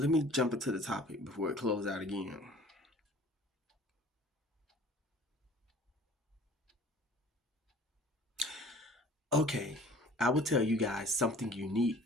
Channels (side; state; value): both; normal; correlation 0.49